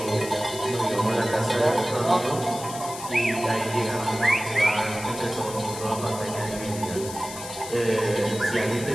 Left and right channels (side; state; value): left; noise; hiss, 11 dB below the sound